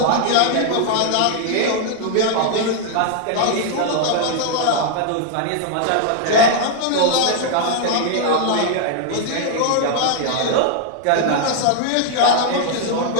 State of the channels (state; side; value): different; both; correlation 0.00